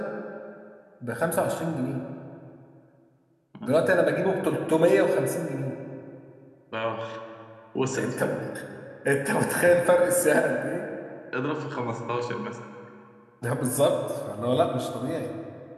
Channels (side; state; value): both; identical; correlation 1.00